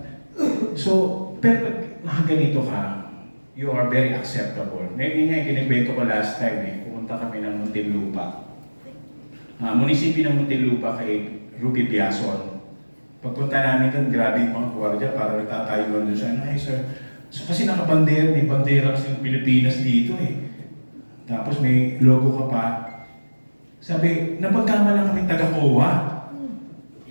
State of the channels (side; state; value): both; inverted; correlation -1.00